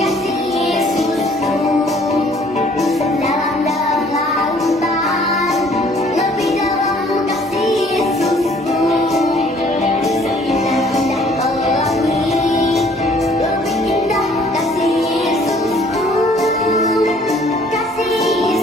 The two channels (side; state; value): both; normal; correlation 0.58